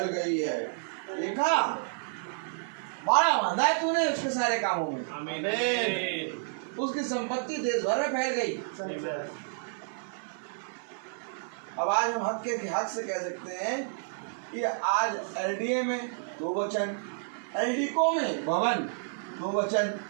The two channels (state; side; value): silent; left; digital silence